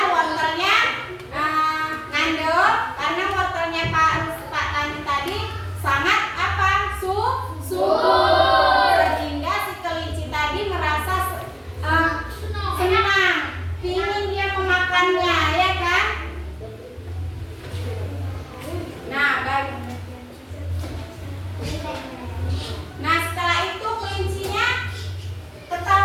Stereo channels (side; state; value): both; identical; correlation 1.00